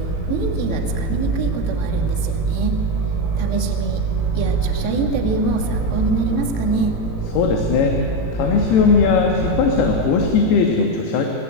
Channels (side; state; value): right; late; 18 ms